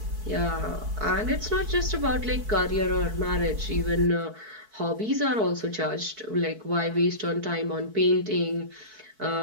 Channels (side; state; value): left; late; 4.6 ms